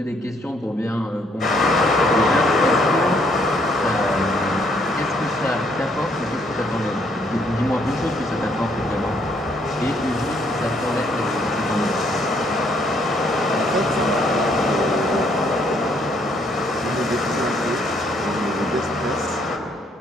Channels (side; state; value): both; normal; correlation 0.68